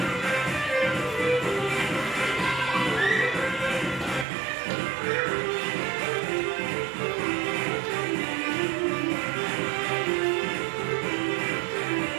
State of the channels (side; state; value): left; drops out; at 4.2 s